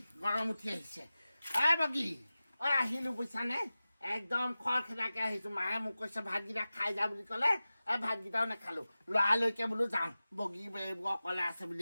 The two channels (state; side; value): inverted; both; correlation -0.96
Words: বগী আহিলো বুজিছানে একদম খৰখেদাকে আহিছো মায়ে মোক কৈছে ভাতকেইটা খাই যা বুলি ক'লে ভাতকেইটাও নাখালো লৰালৈকে বোলো যাওঁ বগী অকলে আছে